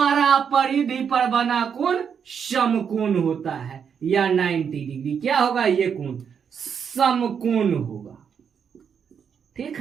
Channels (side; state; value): left; quieter; 7.2 dB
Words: परिधि पर बना कोण समकोण होता है, या 90 डिग्री। क्या होगा? ये कोण समकोण होगा। ठीक